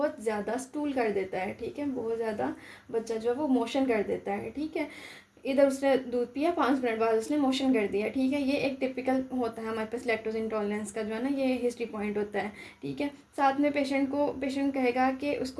ज़्यादा स्टूल कर देता है, ठीक है, बहुत ज़्यादा बच्चा जो है वो मोशन कर देता है, ठीक है। इधर उसने दूध पिया, 5 मिनट बाद उसने मोशन कर दिया, ठीक है। ये एक टिपिकल होता है हमारे पास लैक्टोज इंटॉलरेंस का जो है ना ये हिस्ट्री पॉइंट होता है, ठीक है। साथ में पेशेंट कहेगा कि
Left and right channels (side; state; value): both; identical; correlation 1.00